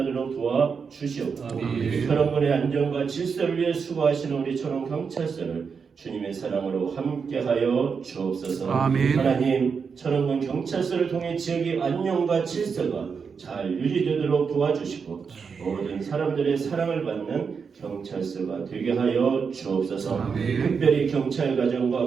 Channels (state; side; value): quieter; left; 5.8 dB